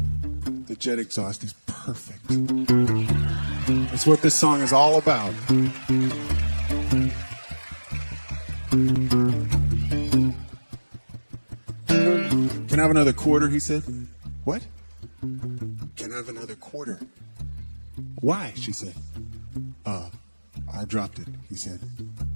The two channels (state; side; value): inverted; both; correlation -1.00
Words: The jet exhaust is perfect. That's what this song is all about. Can I have another quarter, he said. What? Can I have another quarter? Why, she said. I dropped it, he said.